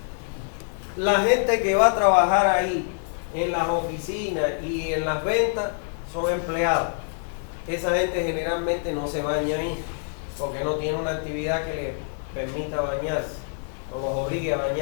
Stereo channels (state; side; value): silent; right; digital silence